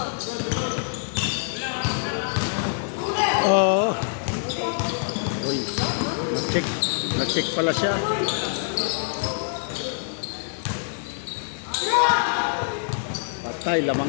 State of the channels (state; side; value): silent; right; 59 dB below the other